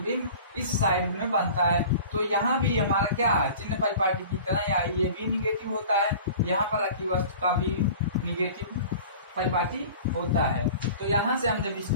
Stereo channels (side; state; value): both; inverted; correlation -0.42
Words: इस साइड में बनता है, तो यहाँ भी हमारा क्या है, चिन्ह परिपाटी की तरह या ये भी निगेटिव होता है, यहाँ पर रखी वस्तु का भी निगेटिव परिपाटी होता है। तो यहाँ से हम जब